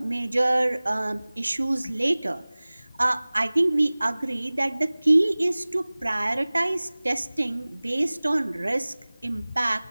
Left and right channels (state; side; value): inverted; both; correlation -0.99